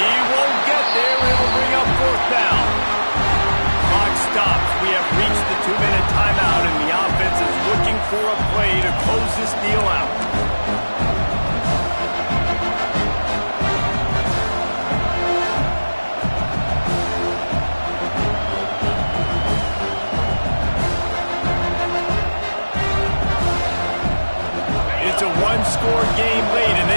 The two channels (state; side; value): inverted; both; correlation -1.00